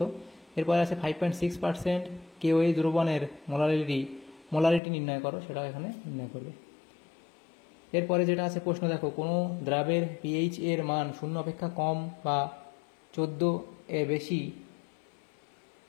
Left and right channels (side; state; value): right; drops out; at 4.8 s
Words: এরপরে আছে 5.6% KOH দ্রবণের মোলারিটি নির্ণয় করো, সেটাও এখানে নির্ণয় করবে। এরপরে যেটা আছে প্রশ্ন দেখো, কোনো দ্রাবের pH এর মান 0 অপেক্ষা কম বা 14 এর বেশি